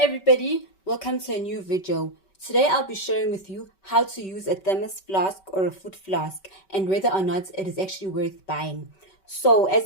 welcome to a new video. Today I'll be sharing with you how to use a thermos flask or a food flask and whether or not it is actually worth buying. So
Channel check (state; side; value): late; right; 5.2 ms